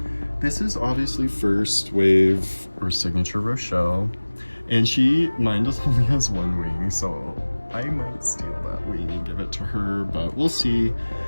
this is obviously first wave or signature Rochelle, and mine just only has one wing, so I might steal that wing and give it to her, but we'll see.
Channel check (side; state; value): both; inverted; correlation -1.00